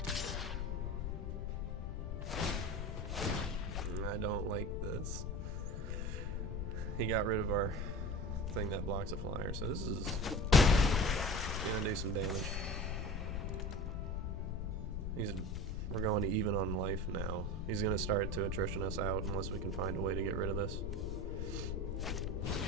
I don't like this. He got rid of our thing that blocks a flyer, so this is gonna do some damage. We're going to even on life now. He's gonna start to attrition us out unless we can find a way to get rid of this.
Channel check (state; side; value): noise; left; rumble, 2 dB below the sound